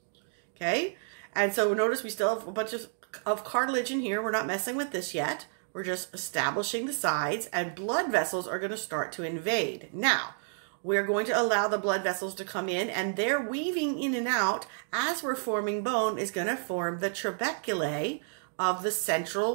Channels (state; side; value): silent; left; digital silence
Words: Okay? And so notice we still have a bunch of cartilage in here. We're not messing with this yet. We're just establishing the sides, and blood vessels are going to start to invade. Now, we're going to allow the blood vessels to come in, and they're weaving in and out as we're forming bone is going to form the trabeculae of the